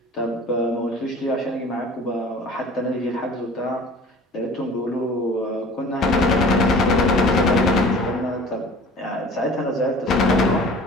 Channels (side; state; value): both; normal; correlation 0.44